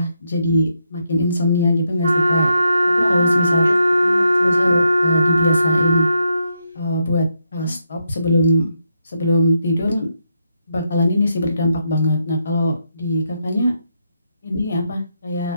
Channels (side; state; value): both; inverted; correlation -0.80